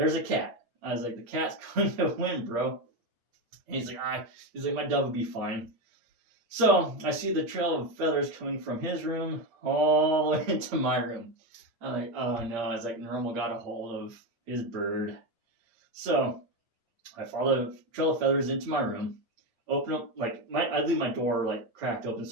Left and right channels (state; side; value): late; left; 8.7 ms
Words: a cat. I was like, the cat's going to win, bro. And he's like, my dove will be fine. So I see the trail of feathers coming from his room all the way into my room. I'm like, oh no. I was like, Normal got a hold of his bird. So I follow the trail of feathers into my room, open up, like, I leave my door like cracked open